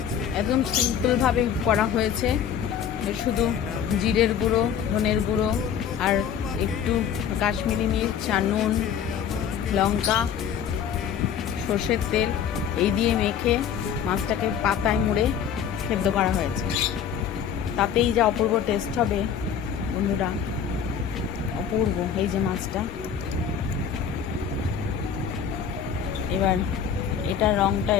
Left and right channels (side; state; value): right; quieter; 8.1 dB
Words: একদম সিম্পলভাবে করা হয়েছে। শুধু জিরের গুঁড়ো, ধনের গুঁড়ো আর একটু কাশ্মীরি মির্চ আর নুন, লঙ্কা, সর্ষের তেল এই দিয়ে মেখে মাছটাকে পাতায় মুড়ে সেদ্ধ করা হয়েছে। তাতেই যা অপূর্ব টেস্ট হবে বন্ধুরা, অপূর্ব। এই যে মাছটা, এবার এটার রঙটা